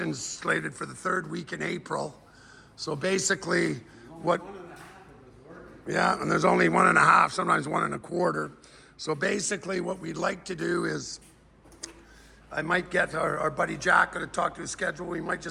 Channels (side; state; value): both; identical; correlation 1.00